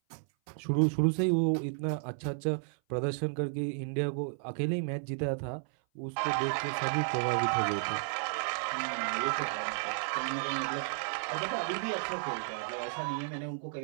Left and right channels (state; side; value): silent; left; 56 dB below the other